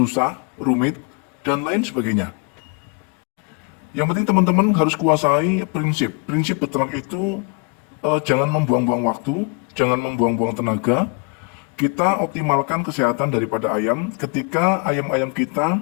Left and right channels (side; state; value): right; quieter; 35.3 dB